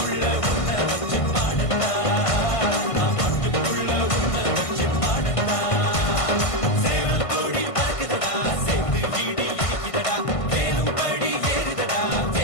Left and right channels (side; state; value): right; late; 1.5 ms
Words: உன்னை வச்சு பாடட்டா நான் பாட்டுக்குள்ள உன்னை வச்சு பாடட்டா சேவல் கோடி பறக்குதடா சேர்த்து வீடு இடிக்குதடா வேலும்படி ஏறுதடா